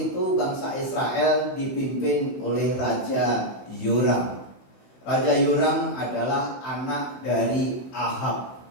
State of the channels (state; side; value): late; right; 15 ms